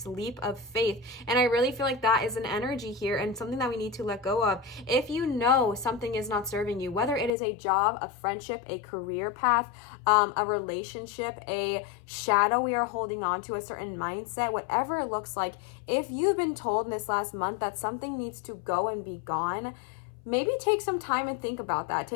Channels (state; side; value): drops out; right; at 7.3 s